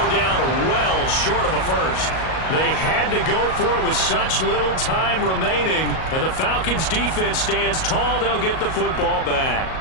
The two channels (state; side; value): late; right; 38 ms